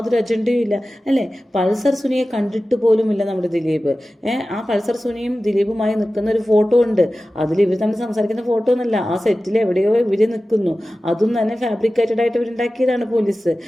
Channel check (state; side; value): normal; both; correlation 0.95